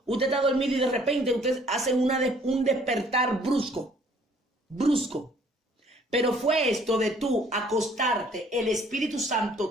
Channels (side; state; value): both; normal; correlation 0.59